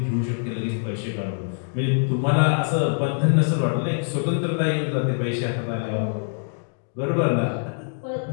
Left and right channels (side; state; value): right; silent; digital silence